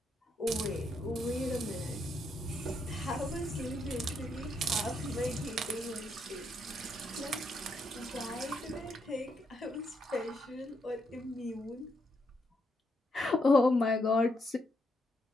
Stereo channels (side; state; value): both; normal; correlation 0.78